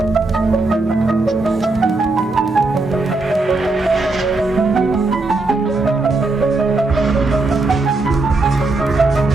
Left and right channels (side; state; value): left; quieter; 3.2 dB